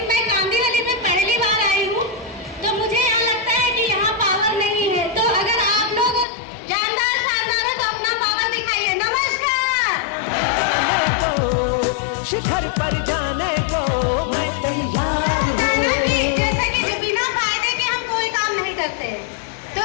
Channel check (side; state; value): right; drops out; at 6.2 s